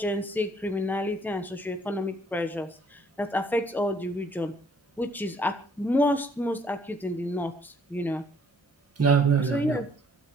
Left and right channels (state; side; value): normal; both; correlation 0.62